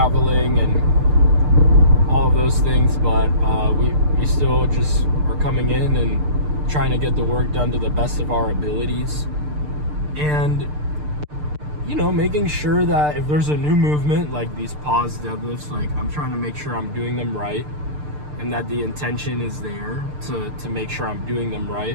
and all of those things, but we still just are coming in and trying to get the work done to the best of our abilities, and you know, making sure that if there's a new movement like these pause deadlifts, like I'm trying to make sure I'm doing them right, and that the intention is there to make sure I'm doing them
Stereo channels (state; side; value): late; left; 6.7 ms